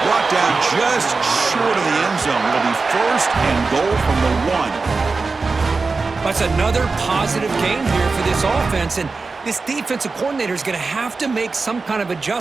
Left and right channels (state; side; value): quieter; left; 4.1 dB